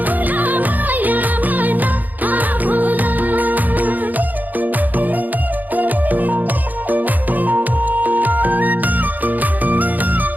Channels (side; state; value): left; late; 0.083 ms